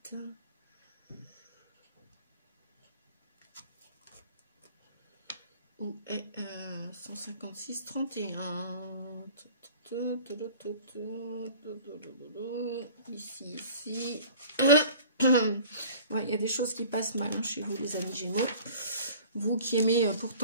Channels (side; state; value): both; inverted; correlation -0.46